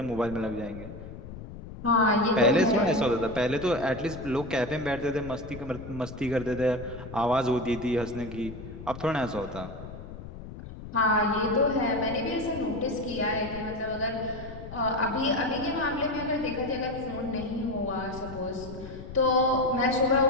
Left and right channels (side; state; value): left; noise; rumble, 12 dB below the sound